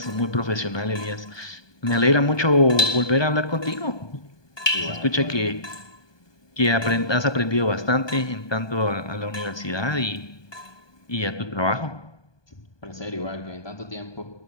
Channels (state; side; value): late; right; 1.2 ms